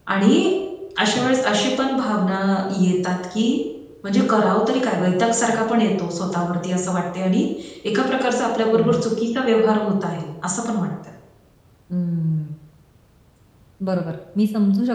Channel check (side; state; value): both; identical; correlation 1.00